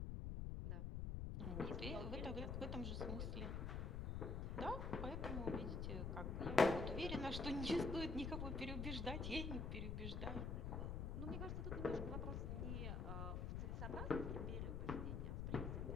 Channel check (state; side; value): noise; left; rumble, 1 dB below the sound